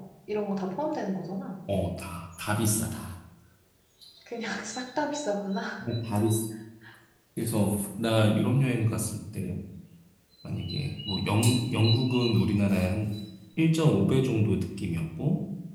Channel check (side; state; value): both; identical; correlation 1.00